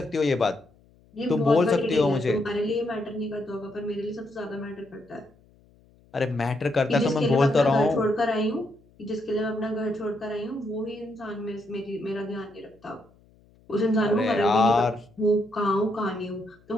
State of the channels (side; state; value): left; noise; hum, 30 dB below the sound